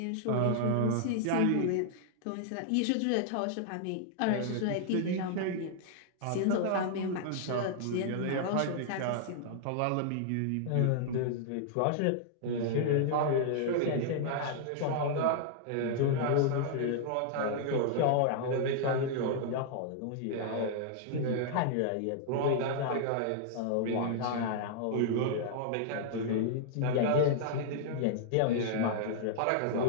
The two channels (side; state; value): both; different; correlation -0.01